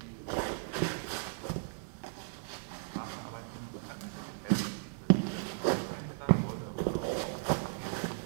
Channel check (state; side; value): silent; left; digital silence